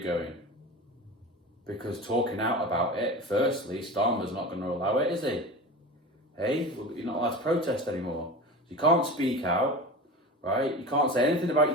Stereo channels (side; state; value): both; normal; correlation 0.30